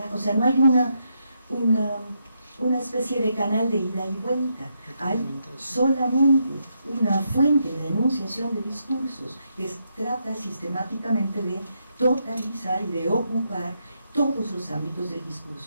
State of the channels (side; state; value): both; inverted; correlation -0.80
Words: o sea, no hay una especie de canal de ida y vuelta. Hay solamente una fuente de enunciación de discursos que trata sistemáticamente de totalizar y de ocupar todos los ámbitos del